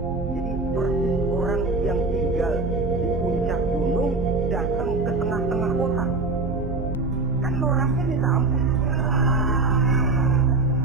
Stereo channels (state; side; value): quieter; left; 3.6 dB